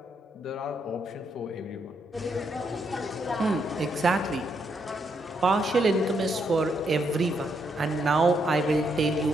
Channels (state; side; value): normal; both; correlation 0.77